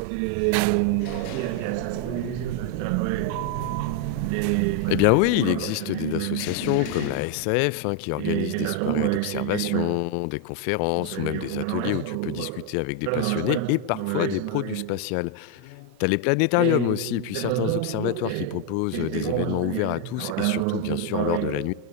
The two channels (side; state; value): both; different; correlation 0.01